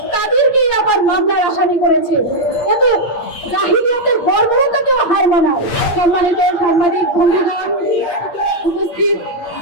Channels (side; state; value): right; late; 8.6 ms